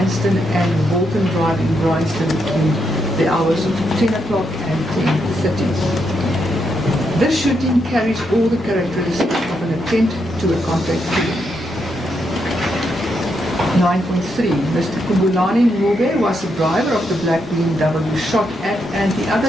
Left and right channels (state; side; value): normal; both; correlation 0.80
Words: and Walton Drive in Bryanston between the hours of 10 o'clock and 10:30. This shooting carries all the characteristics of an attempt to a contact killing. 9.3. Mr. Kumbulani Ngube was the driver of the black BMW shot at, and the